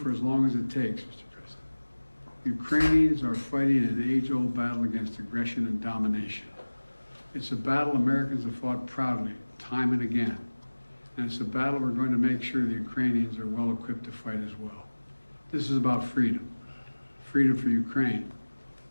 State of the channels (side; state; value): both; inverted; correlation -1.00